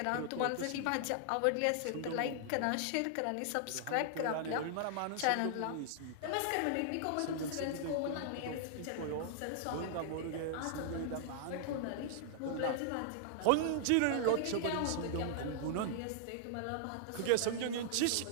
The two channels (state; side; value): different; both; correlation -0.01